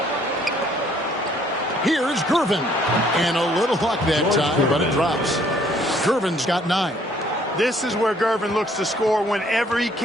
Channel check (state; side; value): normal; both; correlation 0.62